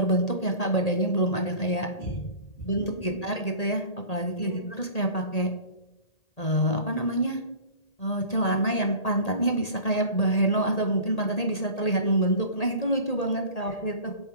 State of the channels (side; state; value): right; late; 1.8 ms